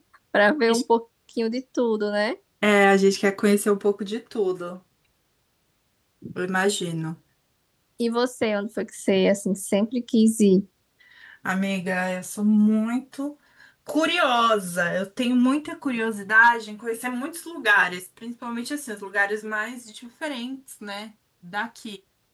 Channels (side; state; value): both; identical; correlation 1.00